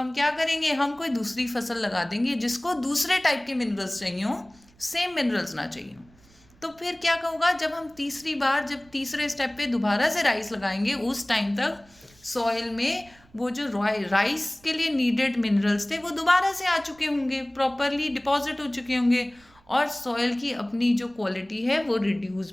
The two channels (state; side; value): noise; right; rumble, 29 dB below the sound